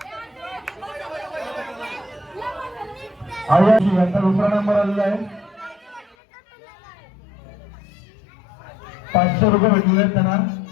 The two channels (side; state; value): right; drops out; at 6.2 s